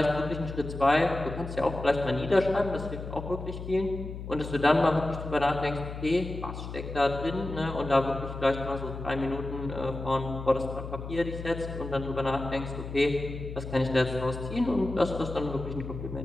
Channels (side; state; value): left; noise; hum, 9 dB below the sound